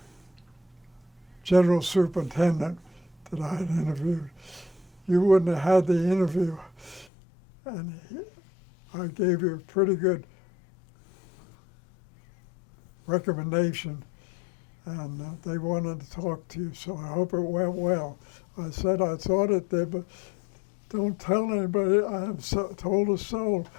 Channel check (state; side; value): drops out; right; at 7.1 s